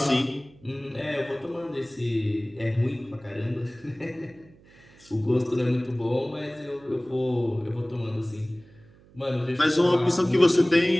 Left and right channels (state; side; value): noise; right; hum, 26 dB below the sound